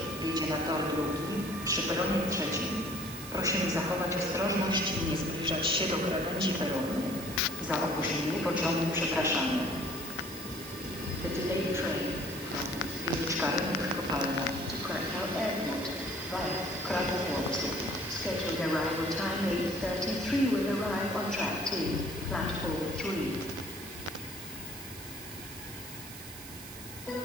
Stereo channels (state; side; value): noise; right; hiss, 13 dB below the sound